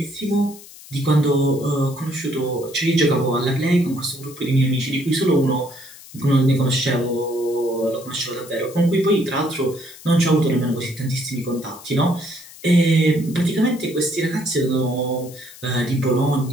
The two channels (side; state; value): left; noise; hiss, 19 dB below the sound